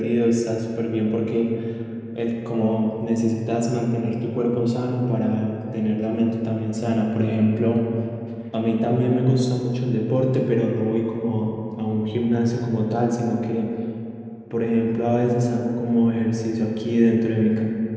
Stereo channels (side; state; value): both; identical; correlation 1.00